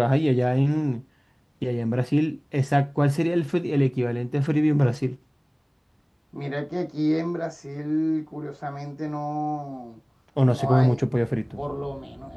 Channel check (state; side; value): identical; both; correlation 1.00